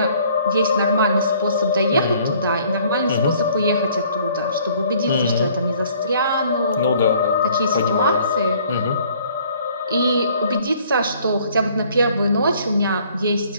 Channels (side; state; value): both; inverted; correlation -0.58